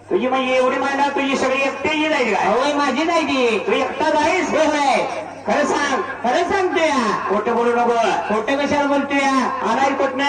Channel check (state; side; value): identical; both; correlation 1.00